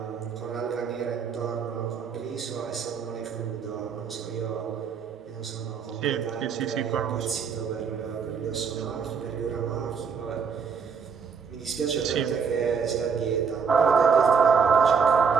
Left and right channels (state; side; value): quieter; left; 6.1 dB